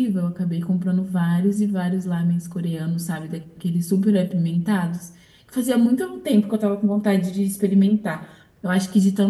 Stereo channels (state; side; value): identical; both; correlation 1.00